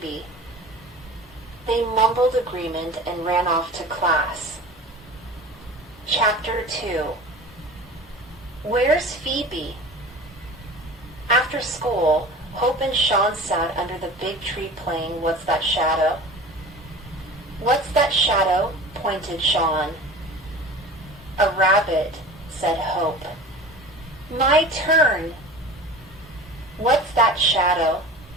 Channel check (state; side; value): normal; both; correlation 0.38